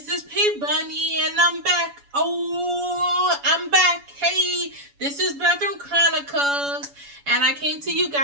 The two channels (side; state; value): left; late; 7.1 ms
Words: is P Bunny, and I'm back. Oh, I'm back. Hey, this is Bathroom Chronicles, and I came to you